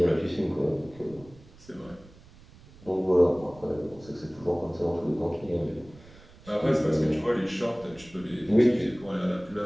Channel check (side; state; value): right; noise; rumble, 23 dB below the sound